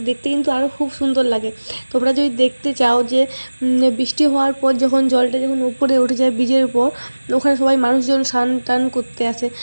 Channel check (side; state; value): both; inverted; correlation -1.00